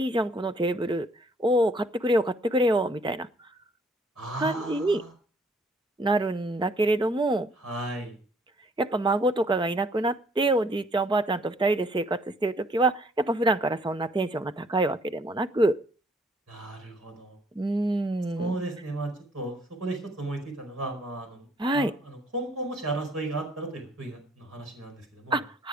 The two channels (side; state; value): both; normal; correlation 0.63